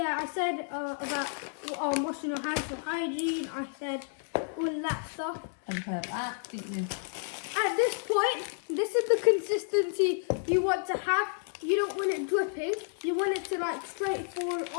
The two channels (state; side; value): silent; right; 57 dB below the other